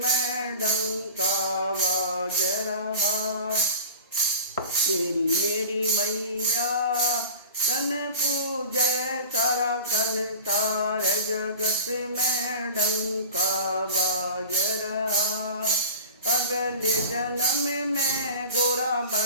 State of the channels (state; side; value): inverted; both; correlation -0.36